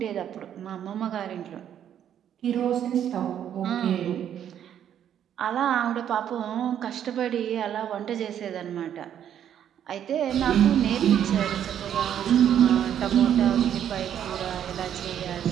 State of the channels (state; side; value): quieter; left; 9.8 dB